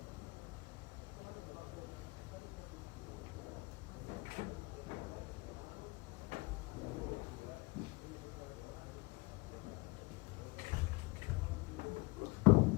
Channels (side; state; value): right; quieter; 24.4 dB